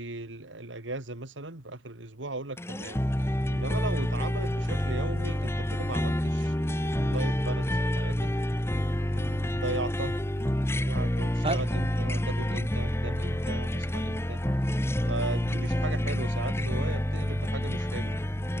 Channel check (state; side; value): normal; both; correlation 0.80